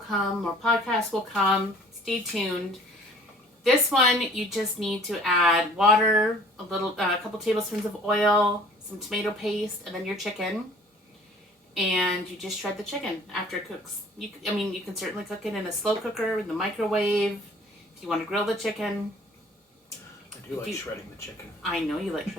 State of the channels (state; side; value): normal; both; correlation 0.52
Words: More podcasts will come. Stay tuned. This one, you just need to add water, a couple tablespoons of oil, some tomato paste, and then your chicken. And you just shred the chicken after it cooks. You can certainly cook it in a slow cooker, in the microwave, if you want to grill the chicken. I do like shredding the chicken. I know you like